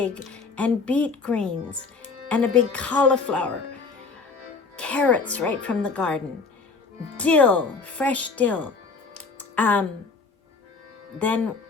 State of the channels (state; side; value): quieter; right; 4.5 dB